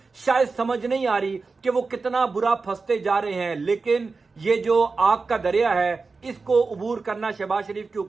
شاید سمجھ نہیں آ رہی کہ وہ کتنا برا پھنستے جا رہے ہیں، لیکن یہ جو آگ کا دریا ہے اس کو عبور کرنا شہباز شریف کی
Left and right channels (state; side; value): quieter; left; 4.2 dB